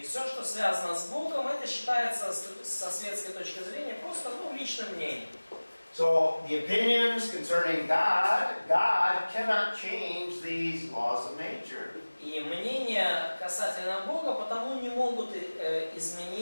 все, что связано с Богом, это считается со светской точки зрения просто личным мнением. So the opinions concerning God cannot change these laws of nature. И мнения касательно Бога потому не могут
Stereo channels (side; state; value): both; inverted; correlation -1.00